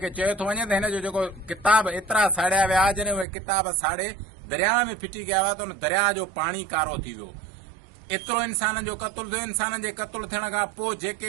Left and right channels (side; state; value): left; drops out; at 3.2 s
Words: चयो थो वञे त हिन जो जेको किताब एतिरा साड़िया विया, जॾहिं उहे किताब साड़े दरिया में फिटी कया हुआ त उन दरिया जो पाणी कारो थी वियो। एतिरो इंसाननि जो क़तल थियो। इंसाननि जे क़तल थियण खां पोइ